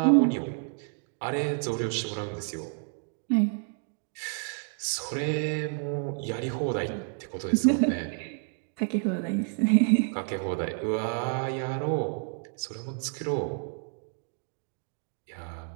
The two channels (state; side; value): silent; left; 57 dB below the other